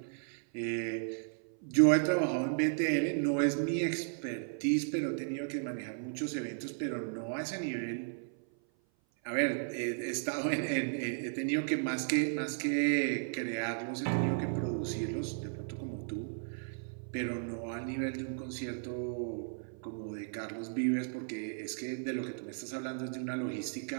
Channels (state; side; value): silent; left; 55 dB below the other